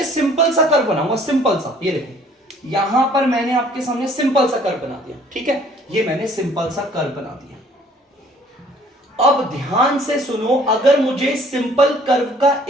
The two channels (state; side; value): normal; both; correlation 0.57